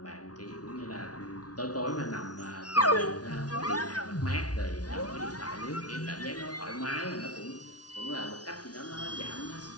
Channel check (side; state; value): right; late; 0.69 ms